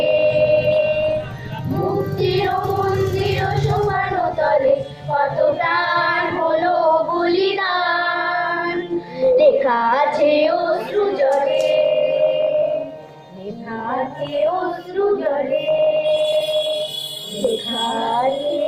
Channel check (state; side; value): identical; both; correlation 1.00